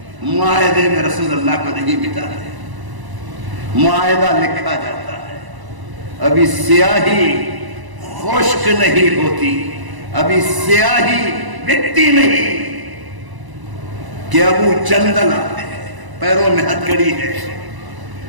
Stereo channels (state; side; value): late; left; 1.0 ms